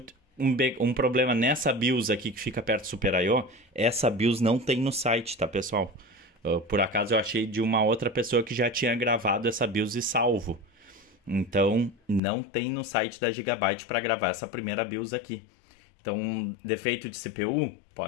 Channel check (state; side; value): drops out; right; at 12.2 s